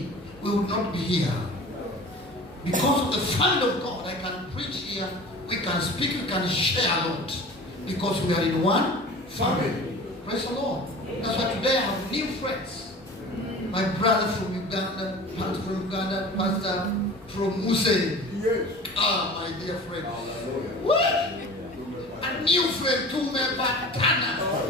we would not be here. Because of the family of God, I can preach here, we can speak, we can share a lot. Because we are in one family. Praise the Lord. That's why today I have new friends. My brother from Uganda, pastor from Uganda, pastor from Muse. Yes. Ah, my dear friend. What? A new friend tumepatana.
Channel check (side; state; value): both; normal; correlation 0.39